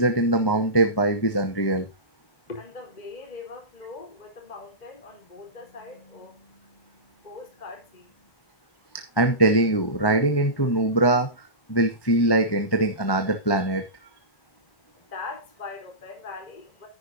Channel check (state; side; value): late; right; 1.2 ms